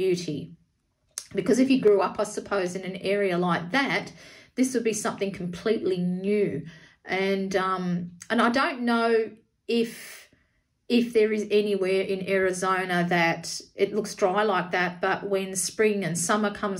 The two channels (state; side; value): identical; both; correlation 1.00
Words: Because if he grew up, I suppose, in an area like that, this would be something completely new. And I don't know if there is anywhere in Arizona that it looks dry like that, but when spring and summer